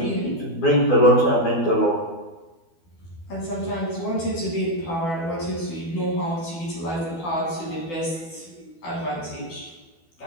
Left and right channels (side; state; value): right; late; 12 ms